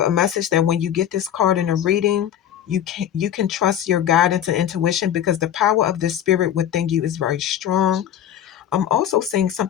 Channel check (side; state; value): right; quieter; 10.3 dB